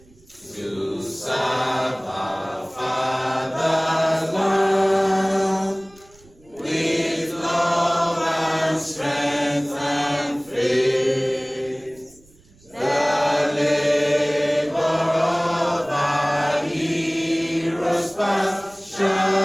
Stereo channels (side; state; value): right; noise; rumble, 28 dB below the sound